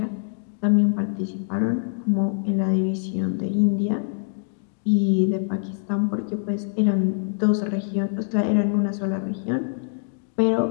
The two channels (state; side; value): silent; right; digital silence